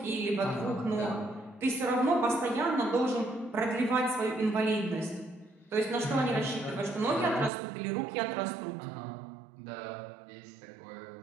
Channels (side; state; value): left; drops out; at 7.5 s